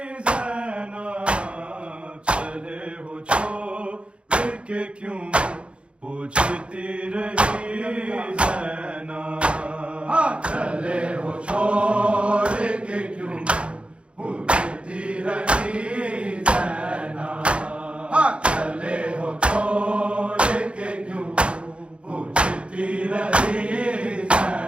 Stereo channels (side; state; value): left; late; 0.059 ms